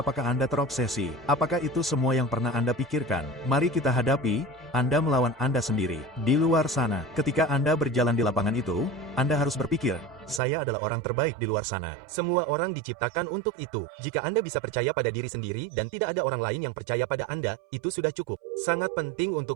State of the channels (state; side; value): drops out; left; at 10.4 s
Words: Anda terobsesi? Apakah itu semua yang pernah Anda pikirkan? Mari kita hadapi, Anda melawan Anda sendiri. Di luar sana, ketika Anda berjalan di lapangan itu, Anda harus berpikir, saya adalah orang terbaik di luar sana. Semua orang diciptakan untuk itu. Jika Anda bisa percaya pada diri sendiri dan tidak ada orang lain yang percaya pada Anda, itu sudah cukup. Sangat penting